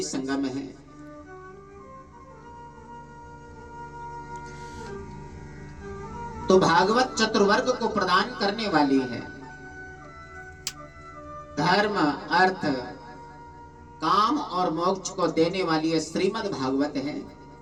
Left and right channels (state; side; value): identical; both; correlation 1.00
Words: संगम है। तो भागवत चतुर्वर्ग को प्रदान करने वाली है। धर्म, अर्थ, काम और मोक्ष को देने वाली ये श्रीमद् भागवत है।